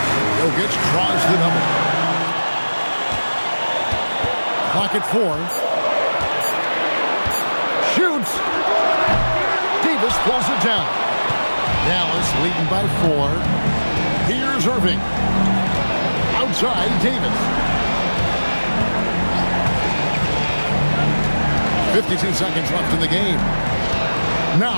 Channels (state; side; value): inverted; both; correlation -1.00